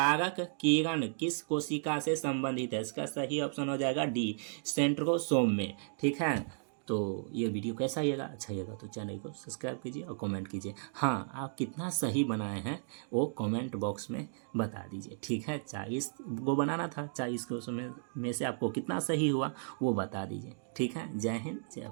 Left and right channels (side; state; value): left; silent; digital silence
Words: किरण किस कोशिका से संबंधित है, इसका सही ऑप्शन हो जाएगा डी, सेंट्रोसोम में। ठीक है। तो ये वीडियो कैसा लगेगा, अच्छा लगेगा तो चैनल को सब्सक्राइब कीजिए और कमेंट कीजिए। हाँ, आप कितना सही बनाए हैं वो कमेंट बॉक्स में बता दीजिए। ठीक है। 40 को बनाना था, 40 को में से आपको कितना सही हुआ वो बता दीजिए। ठीक है। जय हिंद, जय